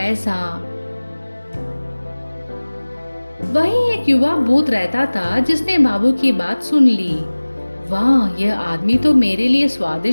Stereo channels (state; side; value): inverted; both; correlation -1.00